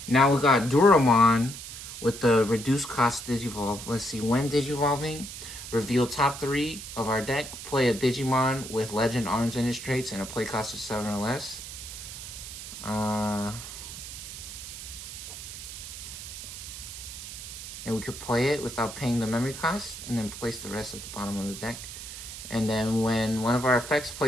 Now we got Duramon with the reduced cost Digivolve. Let's see. When Digivolving, reveal top 3 of our deck. Play a Digimon with Legend Arms in its traits and a play cost of 7 or less. And we could play it without paying the memory cost and then place the rest at the bottom of the deck. And then when one of our effects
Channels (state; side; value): noise; right; hiss, 10 dB below the sound